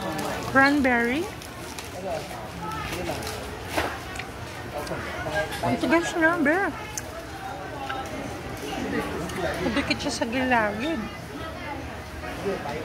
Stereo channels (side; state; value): both; identical; correlation 1.00